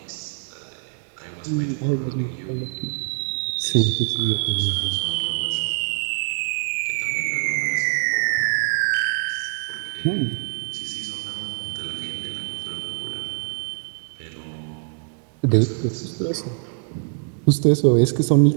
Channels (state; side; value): silent; left; 63 dB below the other